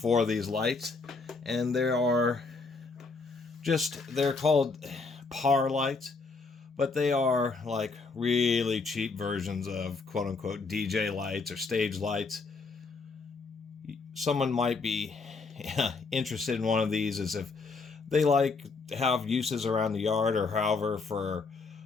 of these lights, and they're called par lights. But they are like really cheap versions of quote-unquote DJ lights or stage lights. Someone might be interested in one of these as if they like have uses around the yard or however for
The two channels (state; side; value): quieter; right; 4.2 dB